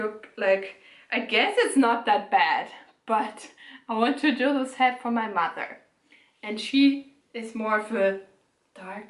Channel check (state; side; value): identical; both; correlation 1.00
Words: like, I guess it's not that bad, but I want to do this hat for my mother. And she is more of a